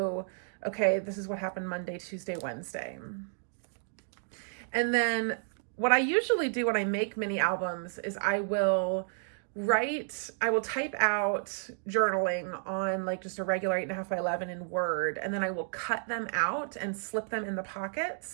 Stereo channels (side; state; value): left; silent; digital silence